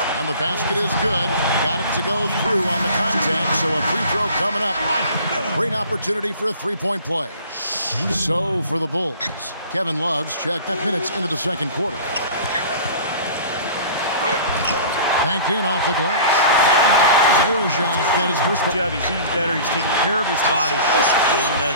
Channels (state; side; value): inverted; both; correlation -0.43